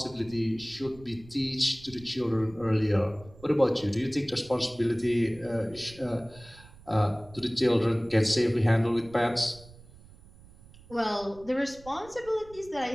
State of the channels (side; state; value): right; noise; rumble, 22 dB below the sound